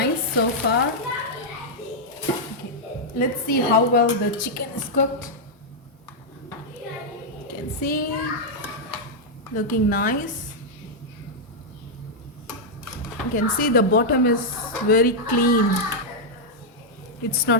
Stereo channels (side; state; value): both; normal; correlation -0.05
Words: so far. Okay. Let's see how well the chicken is cooked. You can see, looking nice. You can see the bottom is very clean. It's